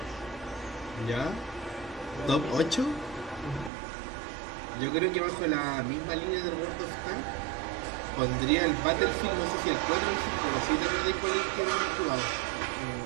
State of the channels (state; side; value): drops out; left; at 3.7 s